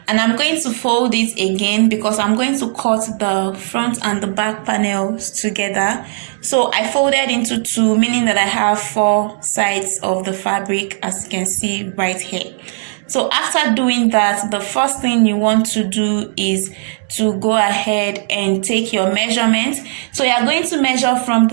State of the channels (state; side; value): silent; left; digital silence